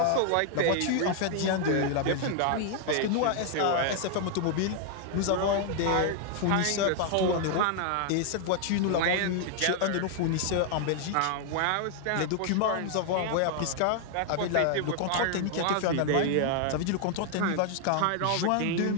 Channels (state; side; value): different; both; correlation 0.00